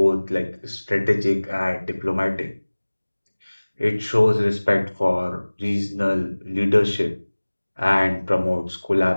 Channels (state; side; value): inverted; both; correlation -1.00